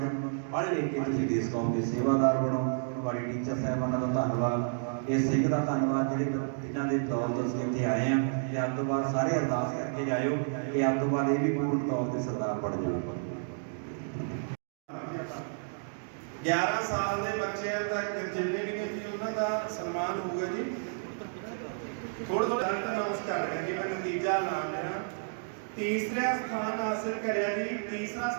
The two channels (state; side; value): silent; left; digital silence